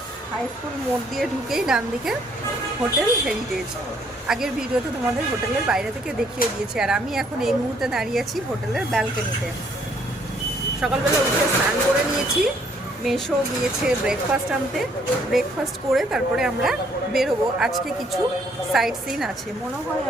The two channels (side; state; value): both; normal; correlation 0.66